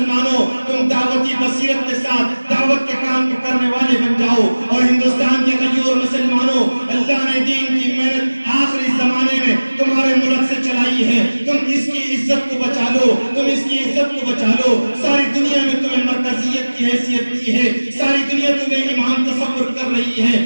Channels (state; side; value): inverted; both; correlation -1.00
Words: تم دعوتی بصیرت کے ساتھ دعوت کے کام کرنے والے بن جاؤ، اور ہندوستان کے غیور مسلمانوں، اللہ نے دین کی محنت آخری زمانے میں تمہارے ملک سے چلائی ہے، تم اس کی عزت کو بچا لو، تم اس کی عزت کو بچا لو۔ ساری دنیا میں تمہیں مرکزیت کی حیثیت دی ہے، ساری دنیا تمہیں امام تصور کر رہی ہے،